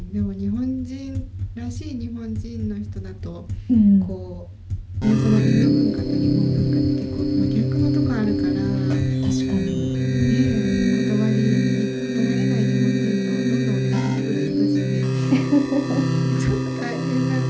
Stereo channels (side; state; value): both; identical; correlation 1.00